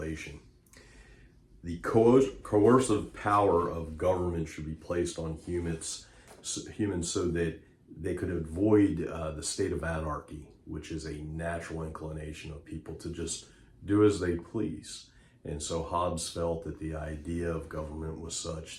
The coercive power of government should be placed on humans so that they could avoid the state of anarchy, which is a natural inclination of people to just do as they please. And so Hobbes felt that the idea of government was such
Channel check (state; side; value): identical; both; correlation 1.00